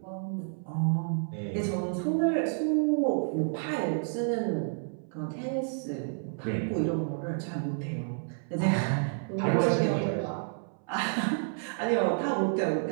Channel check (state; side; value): silent; left; 58 dB below the other